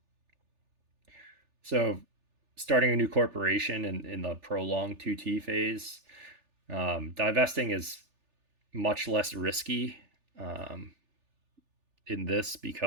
So starting a new corporation in the prolonged 2T phase, divesting is much less risky in this,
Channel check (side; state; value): left; late; 3.4 ms